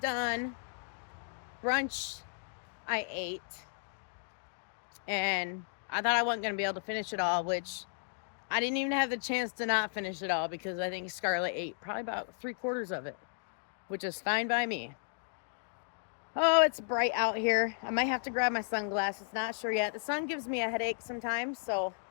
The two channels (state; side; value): silent; right; digital silence